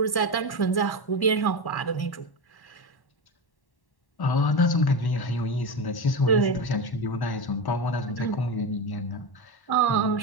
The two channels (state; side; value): late; right; 1.1 ms